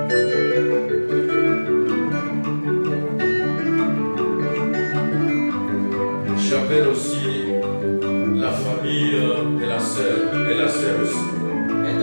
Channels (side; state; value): both; inverted; correlation -1.00